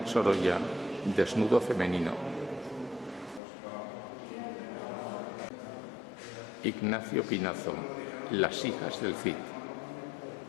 Sorolla, desnudo femenino. Ignacio Pinazo, las hijas del Cid.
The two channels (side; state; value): right; drops out; at 3.4 s